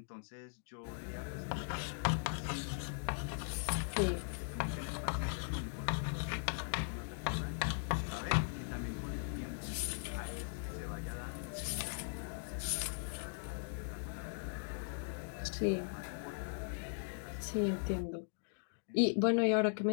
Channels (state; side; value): silent; right; digital silence